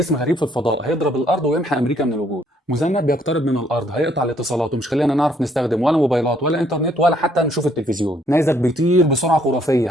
غريب في الفضاء هيضرب الارض ويمحى امريكا من الوجود. مذنب بيقترب من الارض هيقطع الاتصالات ومش خلينا نعرف نستخدم ولا موبايلات ولا انترنت ولا حتى نشوف التلفزيون. نيزك بيطير بسرعه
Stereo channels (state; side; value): normal; both; correlation 0.67